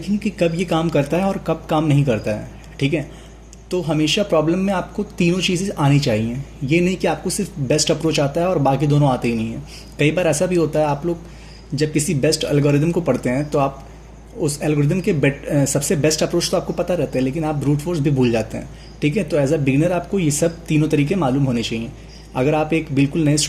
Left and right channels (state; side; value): identical; both; correlation 1.00